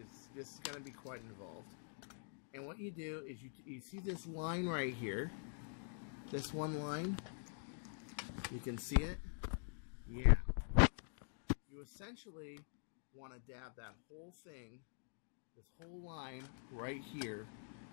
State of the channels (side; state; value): right; silent; digital silence